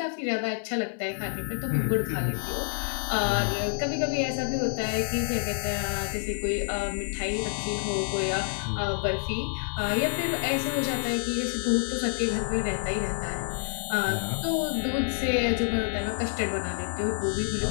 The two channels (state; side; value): silent; right; 56 dB below the other